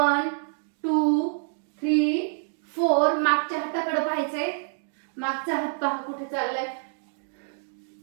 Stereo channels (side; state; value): left; silent; digital silence